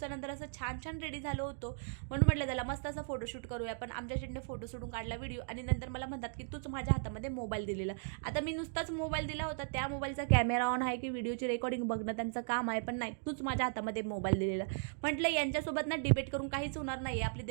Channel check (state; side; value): silent; left; digital silence